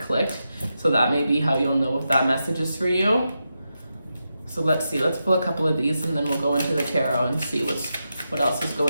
So that may be how you'll know if that message is for you. So let's see, let's pull a couple of these and then we'll go into the tarot and see what else is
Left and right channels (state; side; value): inverted; both; correlation -0.87